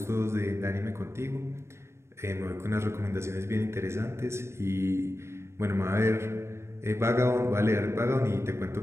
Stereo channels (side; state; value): left; late; 0.13 ms